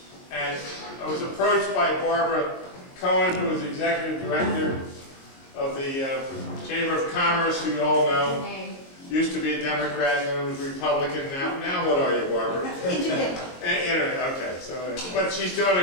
And I was approached by Barbara Cohen, who is Executive Director of the Chamber of Commerce, who you all know. Used to be a Democrat and then was Republican. Now what are you, Barbara? Internet. Okay, so, but she's doing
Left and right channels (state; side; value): late; right; 22 ms